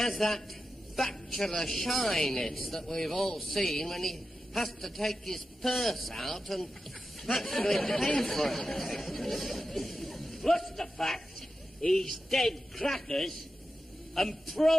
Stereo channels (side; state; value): both; normal; correlation 0.91